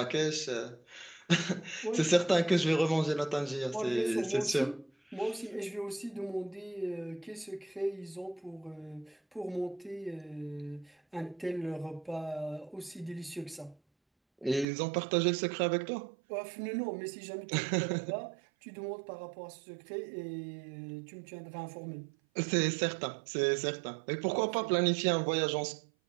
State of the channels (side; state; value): left; drops out; at 14.7 s